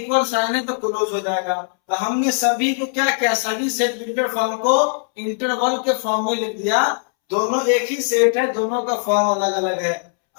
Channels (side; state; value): right; silent; 65 dB below the other